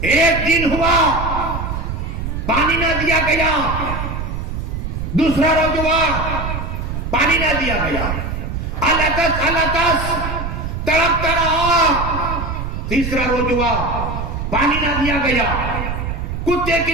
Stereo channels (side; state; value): right; noise; rumble, 4 dB below the sound